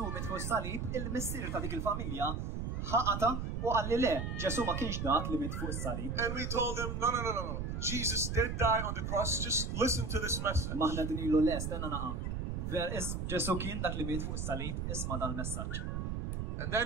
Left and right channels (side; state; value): right; noise; rumble, 2 dB below the sound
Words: mit fuq is-salib, il-missier ta' dik il-familja ħaqata u qalli le, Ġesu ma kienx dak li mit fuq is-salib. And we told him, no. Jesus did die on the cross. Just listen to this message. Maħna din ilu les, tenna naqa. Ġesu kien dak li mit fuq is-salib, isma' dan il-messaġġ. And